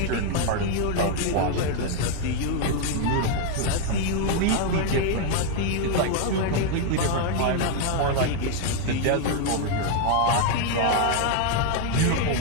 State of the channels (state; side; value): different; both; correlation 0.01